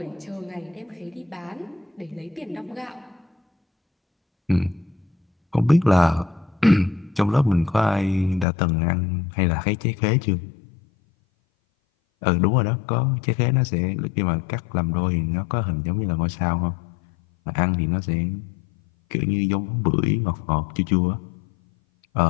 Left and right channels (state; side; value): drops out; right; at 8.5 s